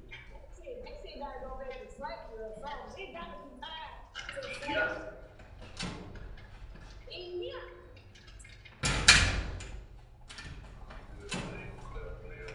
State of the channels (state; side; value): identical; both; correlation 1.00